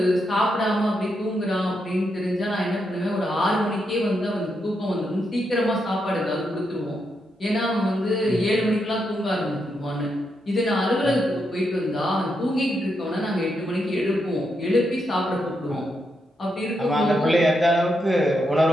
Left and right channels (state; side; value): normal; both; correlation 0.82